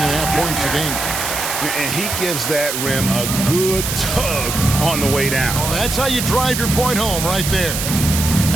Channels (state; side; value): noise; right; hiss, 3 dB below the sound